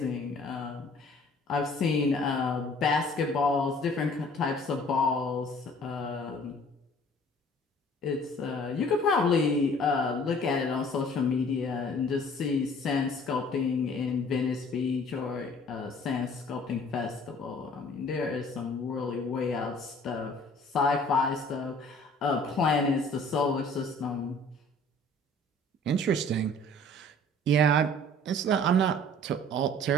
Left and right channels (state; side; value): normal; both; correlation 0.52